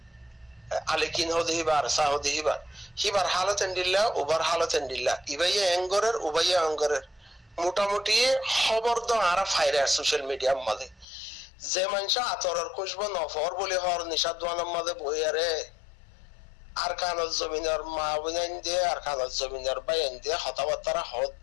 আলেকিন হদিবা আর সাহদিবা হিবার হালত এন্ডিল্লা উবার হালত এন্ডিল্লা ইবাইয়া এঙ্গরের উবাইয়া অঙ্গরের মোটামুটি খবর তো আর ফাইরে সোশ্যাল মিডিয়ার মাঝে যে মানুষ আতরের খুঁজব নফর বলে হর নিশাদ দোয়ানের মাঝে বইয়ারে আর কানত জমিনের মা বুনাইন দিয়ে আর কানত জমিনের বাইন দিয়ে হতাবার্তারা হদ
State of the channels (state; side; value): drops out; right; at 11.1 s